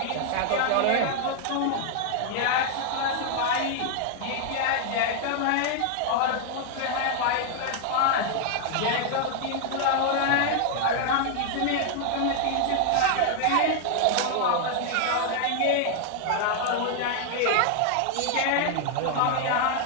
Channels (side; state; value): both; different; correlation 0.00